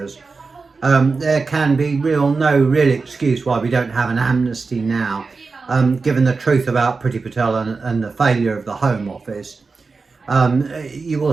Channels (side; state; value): left; quieter; 4.3 dB